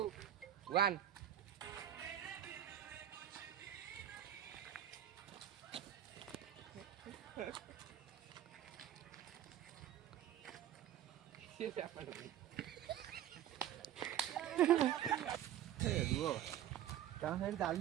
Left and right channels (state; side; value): quieter; left; 11.4 dB